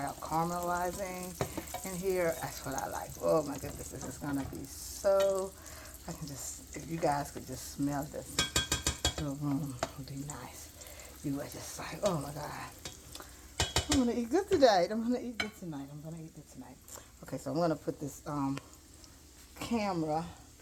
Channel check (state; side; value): identical; both; correlation 1.00